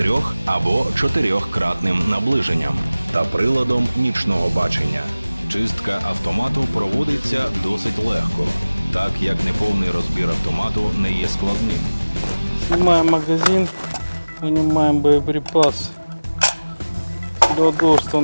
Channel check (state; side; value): inverted; both; correlation -0.99